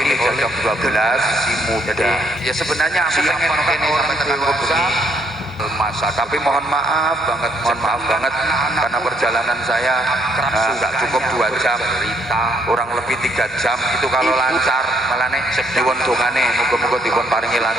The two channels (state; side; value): normal; both; correlation 0.69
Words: ini jam 12 si muda. Ya sebenarnya aku pengen kene sampai tekan kubur masa, tapi mohon maaf banget karena perjalanan saya nggak cukup 2 jam, kurang lebih 3 jam itu kalau lancar. Malah nih diwon dongane muga-muga dipun paringi